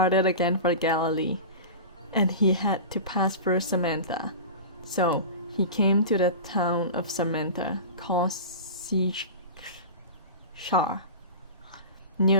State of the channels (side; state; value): both; inverted; correlation -0.31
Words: again for Galilee, and he had to pass through Samaria. So he came to the town of Samaria called Sychar,